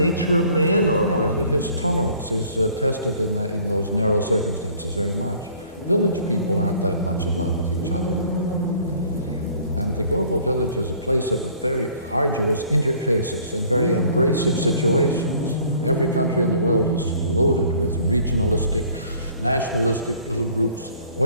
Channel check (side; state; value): both; inverted; correlation -0.54